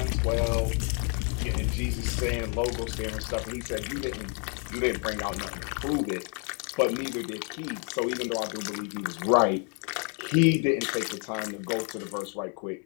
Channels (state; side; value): quieter; right; 38.5 dB